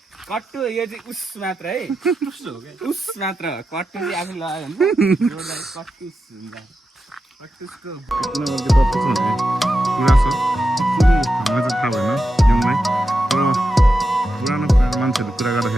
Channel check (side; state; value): both; normal; correlation 0.89